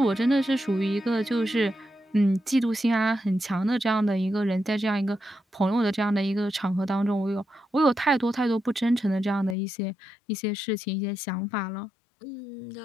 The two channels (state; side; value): drops out; right; at 9.6 s